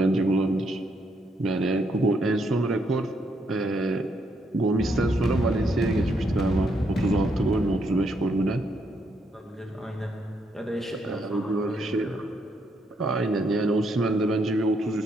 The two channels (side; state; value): both; normal; correlation 0.75